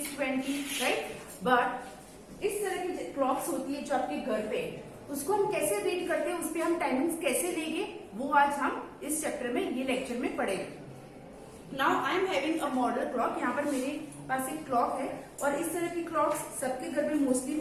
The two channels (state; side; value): identical; both; correlation 1.00